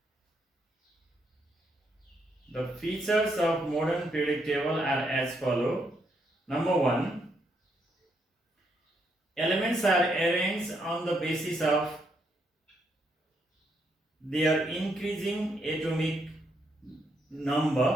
The features of modern periodic table are as follow. Number 1. Elements are arranged on the basis of their increasing atomic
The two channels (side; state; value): both; normal; correlation 0.76